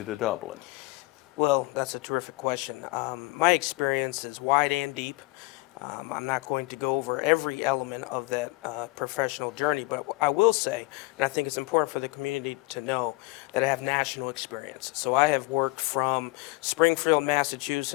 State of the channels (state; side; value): quieter; right; 23.3 dB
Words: to Dublin? Well, that's a terrific question. My experience is wide and deep. I'm not going to go over every element of that professional journey, but I will say, and I think it's important for the community to know, that I have national experience. So I have worked from Springfield,